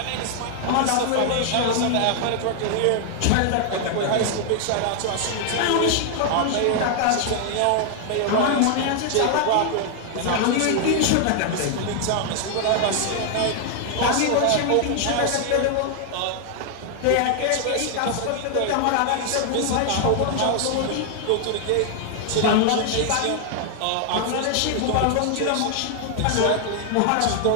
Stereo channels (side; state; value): both; different; correlation 0.00